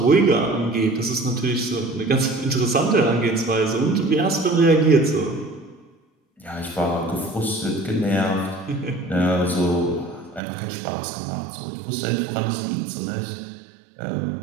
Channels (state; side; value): drops out; left; at 10.4 s